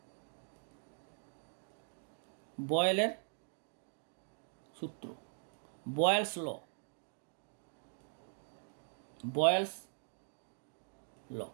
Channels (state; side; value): silent; left; digital silence